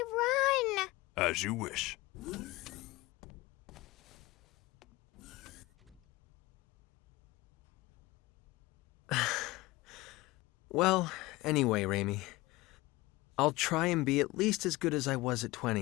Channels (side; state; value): right; quieter; 20.4 dB